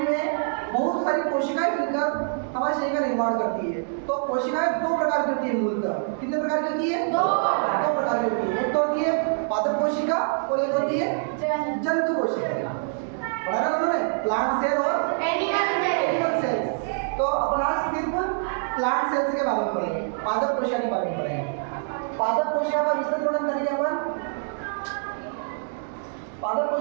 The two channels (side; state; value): left; silent; digital silence